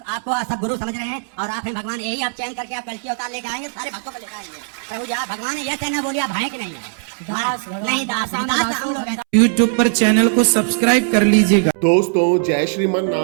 आपको सब गुरु समझ रहे हैं और आप हैं भगवान। यही आप चयन करके आप कल की अवतार लेके आएंगे, सारे भक्तों को लेकर आएंगे प्रभु जी। आप भगवान है, यह कहना बोलिए आप हैं कि नहीं है? दास नहीं, दास हम लोग हैं। YouTube पर चैनल को सब्सक्राइब कर लीजिएगा। दोस्तों, जय श्रीमन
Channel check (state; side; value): silent; left; 66 dB below the other